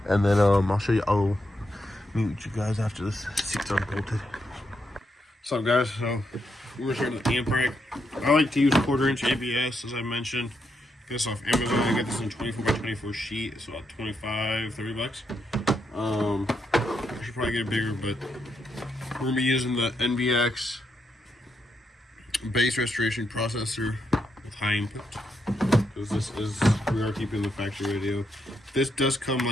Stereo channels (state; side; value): normal; both; correlation 0.81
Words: And then I'll show you. I'll meet you guys after this seat's unbolted. What's up, guys? So we're starting with the amp rack. I like to use 1/4" ABS, as I mentioned. Get this off Amazon. I got this in 24 by 24 sheet. It's about 25, 30 bucks. I should probably get it bigger, but we're gonna be using the NVX bass restoration processor with high input, because we are keeping the factory radio. This does come